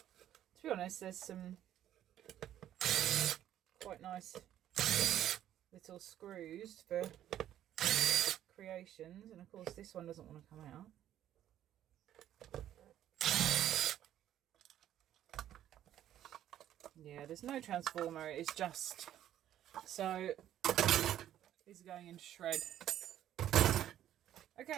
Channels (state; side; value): quieter; left; 11.7 dB